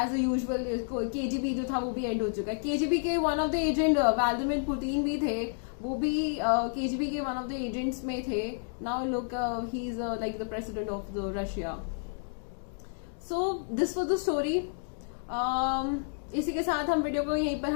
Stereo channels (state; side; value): silent; right; digital silence